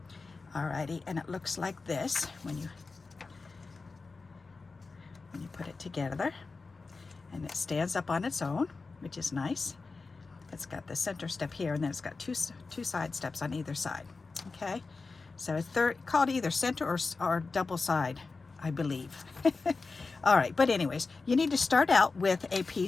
Alrighty, and it looks like this when you put it together, and it stands up on its own, which is nice. It's got the center step here, and then it's got two side steps on either side. Okay, so it's called either center or double side, I believe. All right, but anyways, you need to start out with a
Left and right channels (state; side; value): quieter; right; 4.1 dB